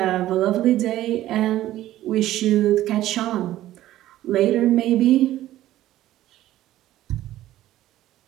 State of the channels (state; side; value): quieter; left; 14.2 dB